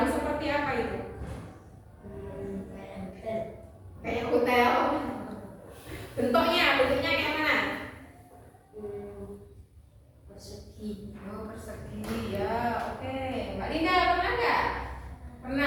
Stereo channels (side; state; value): both; identical; correlation 1.00